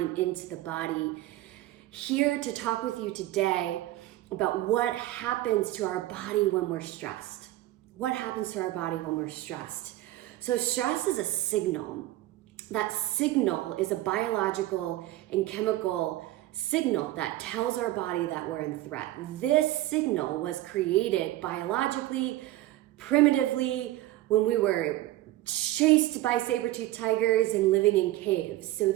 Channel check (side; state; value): left; quieter; 15.9 dB